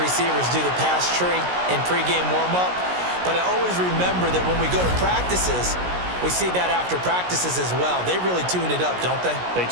receivers do the pass tree in pregame warm-up. But I always remember that when we go to practices, we see that after practices as well. They really tune it up, don't they? They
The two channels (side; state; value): left; late; 17 ms